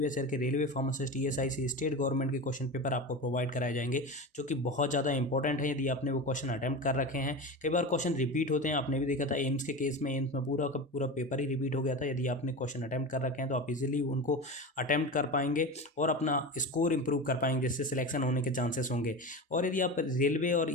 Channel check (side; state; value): both; normal; correlation 0.26